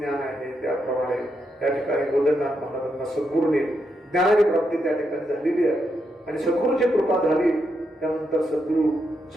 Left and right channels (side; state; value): both; normal; correlation 0.82